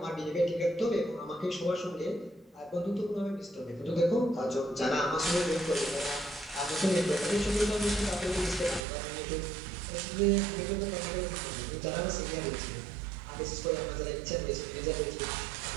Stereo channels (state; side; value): drops out; left; at 8.8 s